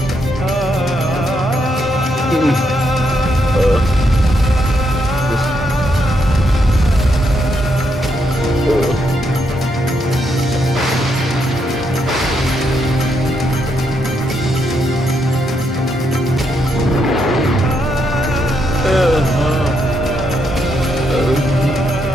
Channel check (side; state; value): both; normal; correlation 0.78